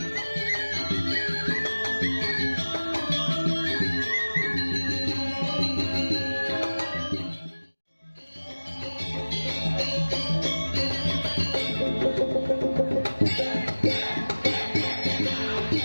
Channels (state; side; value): inverted; both; correlation -1.00